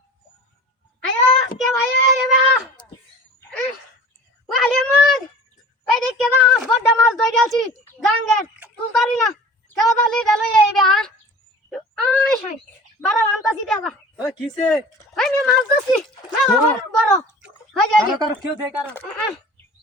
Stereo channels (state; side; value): normal; both; correlation 0.41